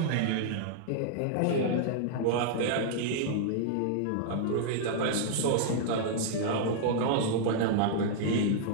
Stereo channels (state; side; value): different; both; correlation -0.01